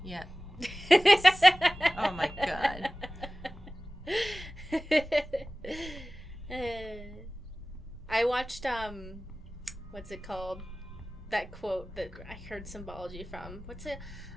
Yeah. Oh my god. I watched, what's it called? That quote that I heard symbology from. What's it?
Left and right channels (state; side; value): normal; both; correlation 0.97